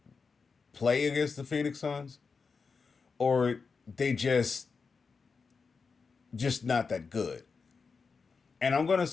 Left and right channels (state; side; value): quieter; right; 5.0 dB